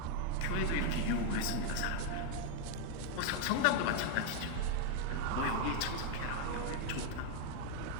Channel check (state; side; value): different; both; correlation 0.01